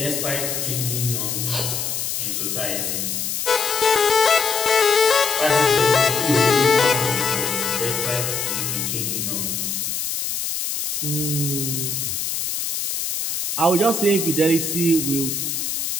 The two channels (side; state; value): left; noise; hiss, 2 dB below the sound